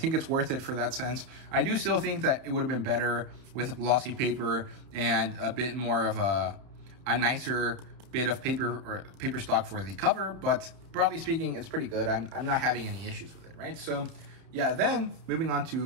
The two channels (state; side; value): late; left; 31 ms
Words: it's worth it for that sense. I do still think that it would have been better with glossy paper and a bit more of a nicer bit of paper or paper stock for the cover, but broadly speaking, it's pretty good. I'm not having any issues with it, right? So yeah, then moving on